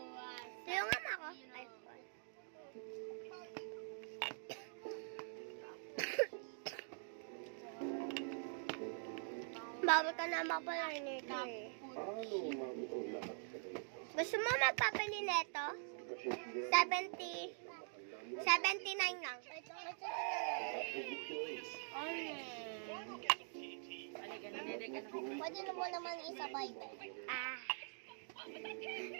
Tulungan mo ako. Ay, fun. Bawal ka na mapalarinito eh. Gusto mo magpapali nito? 79 lang. Pwede na mo naman isabay.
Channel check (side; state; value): left; silent; digital silence